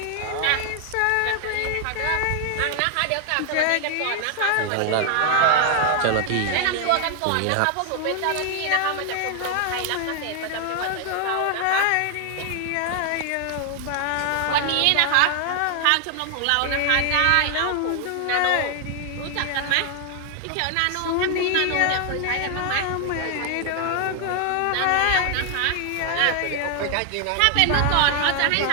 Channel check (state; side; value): different; both; correlation 0.00